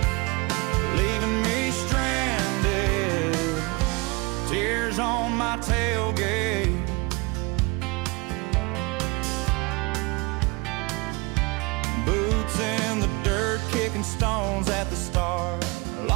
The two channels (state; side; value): quieter; left; 26.7 dB